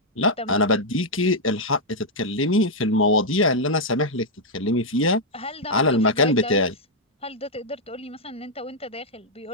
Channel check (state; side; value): normal; both; correlation -0.04